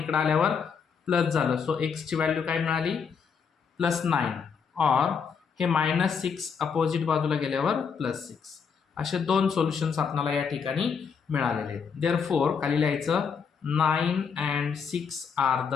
आल्यावर प्लस झालं. सो x ची व्हॅल्यू काय मिळाली +9 और हे -6 अपोजिट बाजूला गेल्यावर +6. असे दोन सोल्युशन्स आपल्याला या ठिकाणी मिळालेले आहेत. देअरफॉर खाली लिहायचं 9 and 6 are the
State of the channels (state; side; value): quieter; right; 6.3 dB